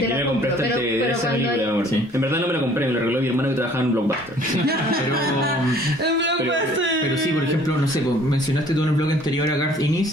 te la compro, pero cuando hay... En verdad no me la compré, me la regaló mi hermano que trabajaba en Blockbuster. pero sí, por ejemplo, no sé, pues, mencionaste tú en el blog anterior a Garth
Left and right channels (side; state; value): both; normal; correlation 0.55